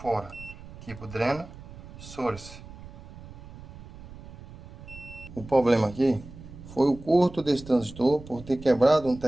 Tipo dreno, source. O problema aqui foi o curto desse transistor por ter quebrado um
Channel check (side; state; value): right; noise; rumble, 16 dB below the sound